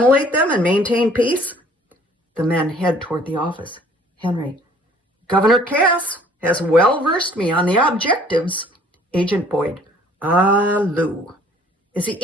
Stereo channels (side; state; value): both; normal; correlation 0.56